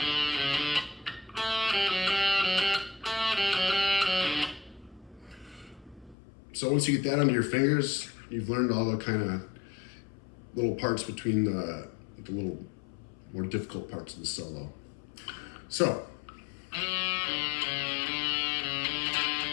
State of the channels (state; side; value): drops out; right; at 6.2 s